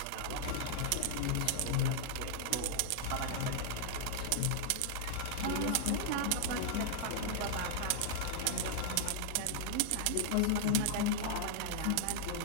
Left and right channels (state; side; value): different; both; correlation -0.01